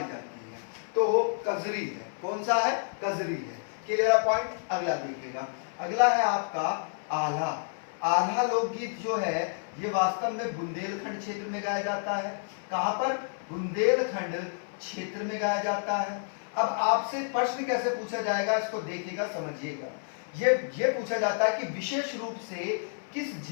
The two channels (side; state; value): right; silent; 57 dB below the other